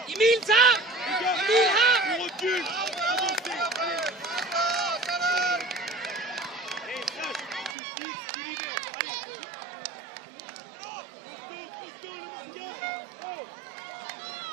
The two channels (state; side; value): drops out; left; at 7.8 s